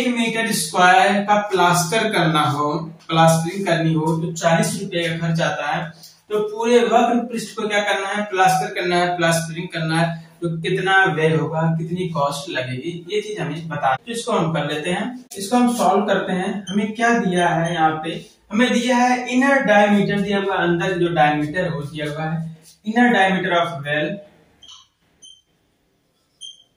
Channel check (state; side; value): identical; both; correlation 1.00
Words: मीटर स्क्वायर का प्लास्टर करना हो, प्लास्टरिंग करनी हो तो 40 रुपए का खर्च आता है। तो पूरे वक्र पृष्ठ को क्या करना है, प्लास्टर करना है, प्लास्टरिंग करना है, तो कितना व्यय होगा, कितनी कॉस्ट लगेगी, ये चीज हमें बता। तो इसको हम कर लेते हैं, इसको हम सॉल्व करते हैं। हमें क्या दिया है, यहाँ पे हमें दिया है इनर डायमीटर दिया हुआ, अंदर जो डायमीटर हो दिया हुआ है, इनर डायमीटर ऑफ वेल